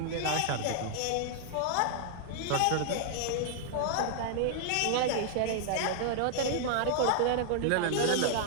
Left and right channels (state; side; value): different; both; correlation -0.01